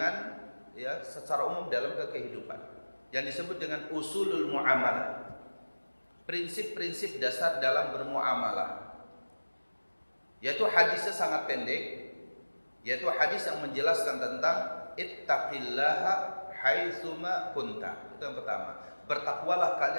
ya secara umum dalam kehidupan, yang disebut dengan usulul muamalah, prinsip-prinsip dasar dalam bermuamalah. Yaitu hadisnya sangat pendek, yaitu hadis yang menjelaskan tentang ittaqillaha haitsuma kunta. Itu yang pertama. Bertakwalah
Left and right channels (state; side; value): inverted; both; correlation -1.00